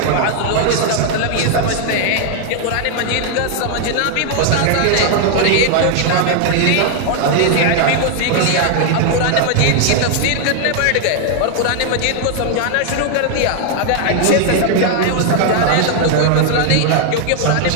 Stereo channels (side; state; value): both; different; correlation 0.00